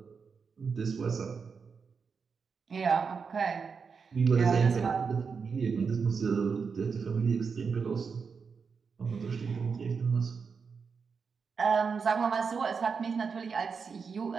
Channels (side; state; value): left; quieter; 5.6 dB